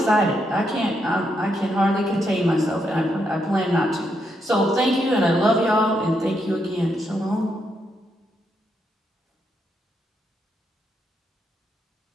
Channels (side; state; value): both; normal; correlation 0.79